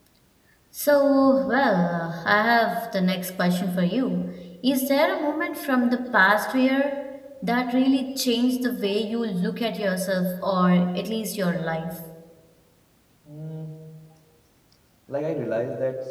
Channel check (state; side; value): identical; both; correlation 1.00